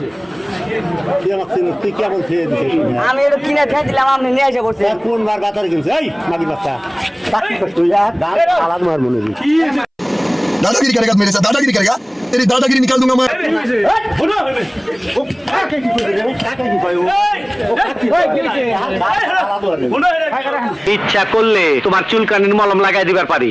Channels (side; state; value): both; identical; correlation 1.00